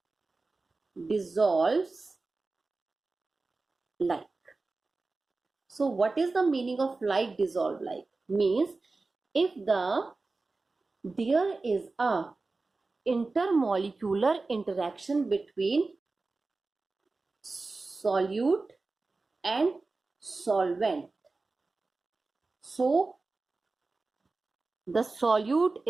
dissolves like. So what is the meaning of like dissolve like? Means if there is a intermolecular interaction between solute and solvent, so the solute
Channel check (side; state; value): left; quieter; 3.6 dB